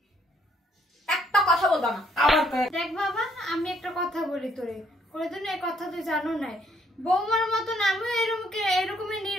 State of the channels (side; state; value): both; normal; correlation 0.68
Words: একটা কথা বলবা না। আবার দেখ বাবা, আমি একটা কথা বলি তোরে, কোনোদিন এই কথা তুই জানো নাই, বৌমার মতন আমিও এরকমই